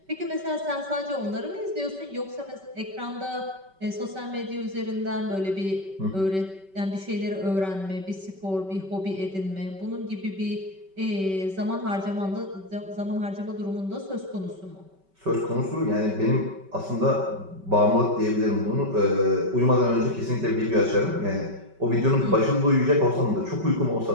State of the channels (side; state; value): left; late; 5.2 ms